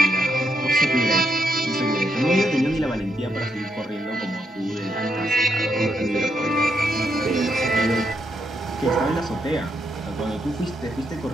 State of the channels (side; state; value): both; normal; correlation 0.79